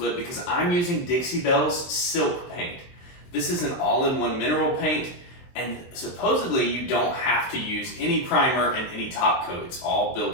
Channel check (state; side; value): late; right; 23 ms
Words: because I'm using Dixie Belle's silk paint. This is an all-in-one mineral paint, and supposedly you don't have to use any primer and any top coat. It's all